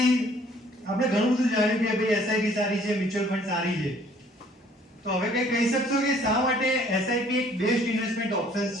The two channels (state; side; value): normal; both; correlation 0.58